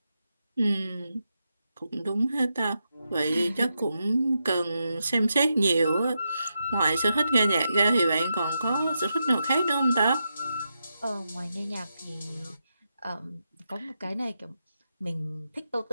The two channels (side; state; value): both; inverted; correlation -0.86